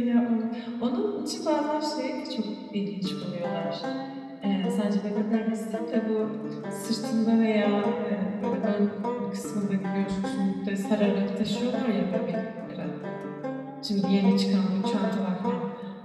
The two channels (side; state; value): both; identical; correlation 1.00